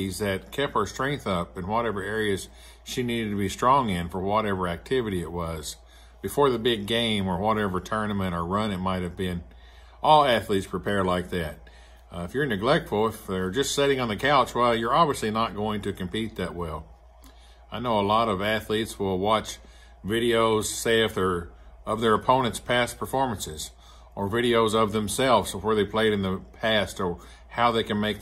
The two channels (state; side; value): identical; both; correlation 1.00